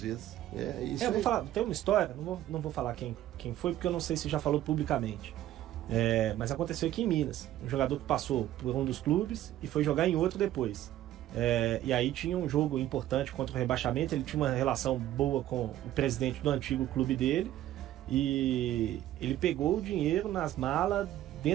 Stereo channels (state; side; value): quieter; left; 13.3 dB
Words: vezes. É isso. Eu vou aí. falar, tem uma história, não vou falar quem foi, porque eu não sei se já falou publicamente. Mas aconteceu aqui em Minas. Um jogador que passou por um dos clubes e foi jogar em outro depois. E aí tinha um jogo importante contra o rebaixamento. Ele tinha uma relação boa com o presidente do antigo clube dele. E ele pegou o dinheiro nas malas,